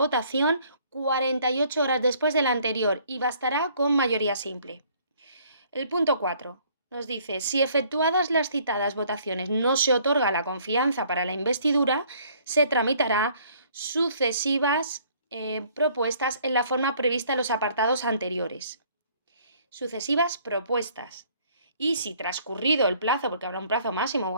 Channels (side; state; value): both; inverted; correlation -0.60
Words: 48 horas después de la anterior y bastará con mayoría simple. El punto 4 nos dice, si efectuadas las citadas votaciones no se otorga la confianza para la investidura, se tramitará sucesivas propuestas en la forma prevista en los apartados anteriores. Sucesivas propuestas. Y si transcurrido el plazo, porque habrá un plazo máximo,